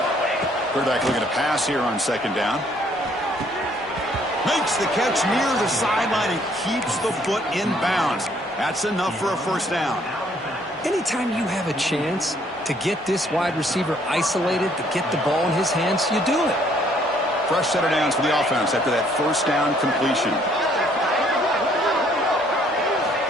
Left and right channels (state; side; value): normal; both; correlation 0.64